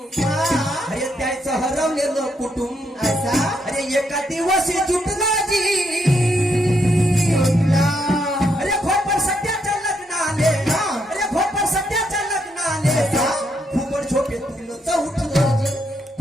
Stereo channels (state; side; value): normal; both; correlation 0.76